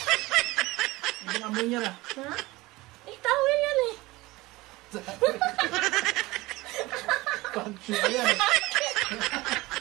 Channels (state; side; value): quieter; left; 20.5 dB